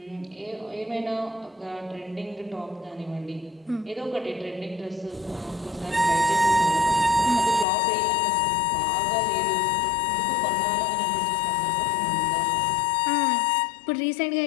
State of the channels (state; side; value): drops out; right; at 7.7 s